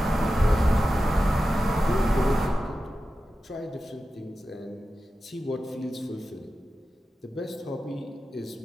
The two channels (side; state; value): both; normal; correlation 0.93